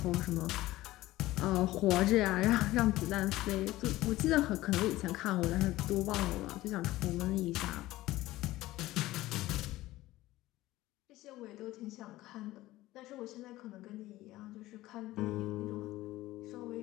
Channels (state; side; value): quieter; right; 17.0 dB